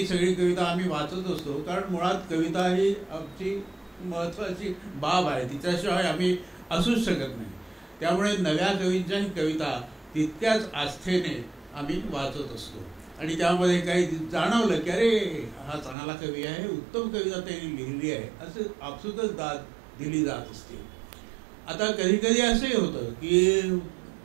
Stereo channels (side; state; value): left; drops out; at 16.0 s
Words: सगळी कविता आम्ही वाचत असतो, कारण मुळात कविता ही आमची महत्त्वाची बाब आहे, तिच्याशिवाय आम्ही असूच शकत नाही. त्यामुळे नव्या कवींच्याही कविता तितक्याच आस्थेने आम्ही वाचत असतो आणि त्यामध्ये काही जाणवलं की अरे हा चांगला कवी आहे, उत्तम कविता त्यांनी लिहिली आहे, असं आपसुकच दाद दिली जात असते. आता कधी कधी असंही होतं की